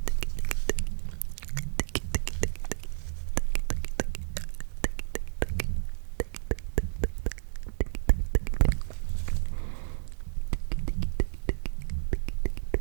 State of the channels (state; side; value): silent; left; 57 dB below the other